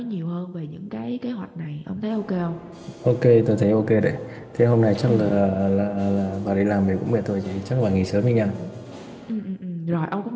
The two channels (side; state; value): both; identical; correlation 1.00